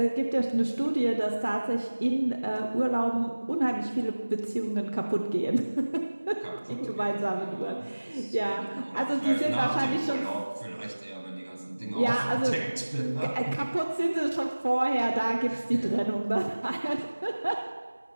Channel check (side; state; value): both; inverted; correlation -1.00